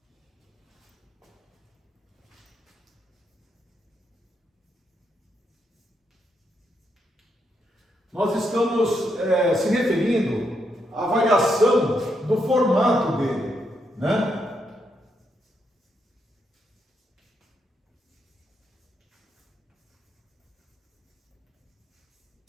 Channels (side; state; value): both; normal; correlation 0.80